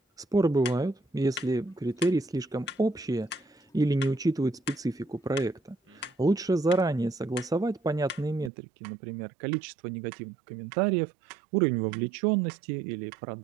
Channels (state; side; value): drops out; left; at 8.5 s